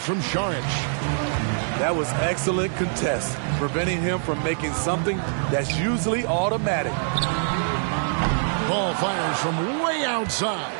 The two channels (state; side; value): silent; left; digital silence